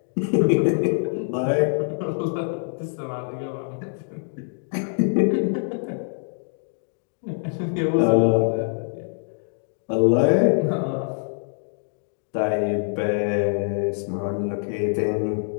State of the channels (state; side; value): silent; right; digital silence